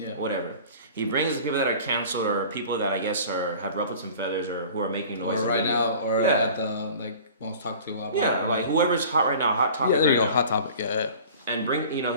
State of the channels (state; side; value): inverted; both; correlation -0.43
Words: Whatever. He brings the people that are canceled, or people that I guess have ruffled some feathers, or who are making noise. Or right now, or at the most talked to about. Yeah, like whoever's hot right now, hot topic. Yeah, there you go, now. hot topic. Yeah. And